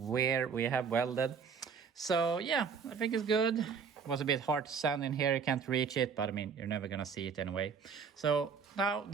we have welded. So yeah, I think it's good. It was a bit hard to sand in here. You can't reach it, but I mean, you're never gonna see it anyway. So now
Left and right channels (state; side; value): quieter; left; 6.2 dB